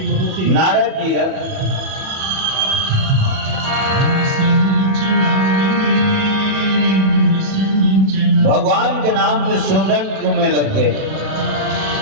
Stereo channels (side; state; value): left; late; 37 ms